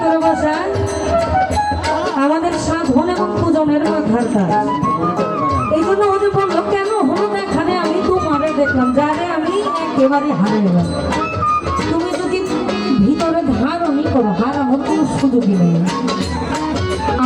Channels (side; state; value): both; identical; correlation 1.00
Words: বসায় আমাদের সাধন এবং পূজনের মাথার কাজ। এই জন্য ওদের বললো, কেন হলো এখানে আমি তোমারে দেখলাম, যারে আমি একেবারে হারিয়ে গেলাম। তুমি যদি ভিতরে ধারণই করো, হারানোর কোনো সুযোগই নেই।